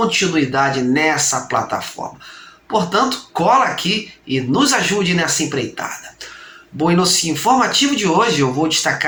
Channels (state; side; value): identical; both; correlation 1.00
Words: nessa plataforma. Portanto, cola aqui e nos ajude nessa empreitada. Bom, e no informativo de hoje eu vou